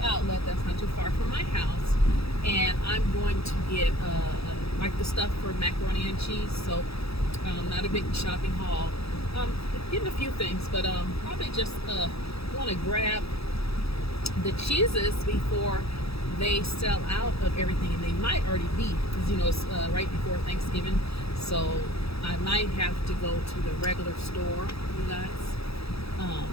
that's not too far from my house, and I'm going to get like the stuff for macaroni and cheese. So, not a big shopping haul. Um, Getting a few things, but probably just want to grab the cheeses before they sell out of everything, and they might already be because it's right before Thanksgiving. So I might have to go to the regular store, you guys. Um,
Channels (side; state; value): right; late; 0.77 ms